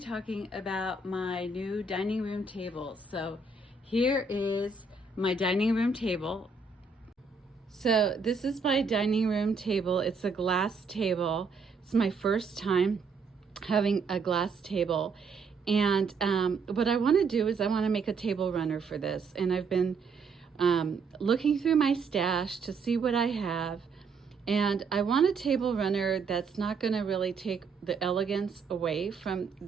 about my new dining room table. So here is my dining room table. So this is my dining room table. It's a glass table. It's my first time having a glass table. And what I want to do is I want to make a table runner for this. And I've been looking through my stash to see what I have. And I want a table runner that's not going to really take the elegance away from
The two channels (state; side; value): quieter; left; 4.5 dB